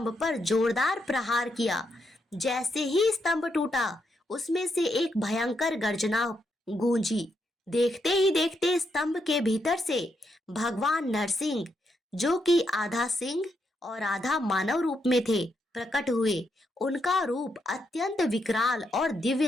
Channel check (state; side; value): normal; both; correlation 0.80